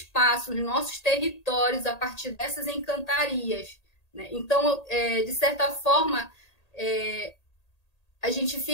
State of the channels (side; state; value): right; late; 1.8 ms